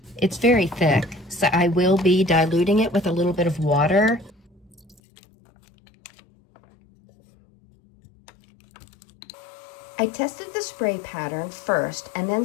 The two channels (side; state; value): right; drops out; at 5.0 s